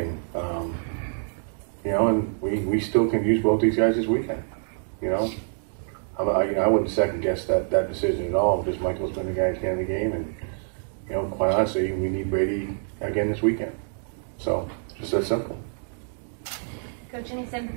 and we still can use both these guys this weekend. I wouldn't second guess that decision at all, because Michael's been the guy at the end of the game, and quite honestly, we need Brady again this weekend. So, just that simple. Coach, any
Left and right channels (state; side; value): silent; left; digital silence